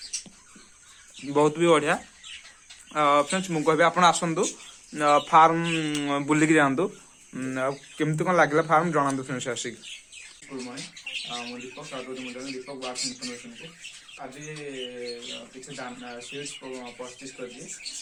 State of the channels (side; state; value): both; identical; correlation 1.00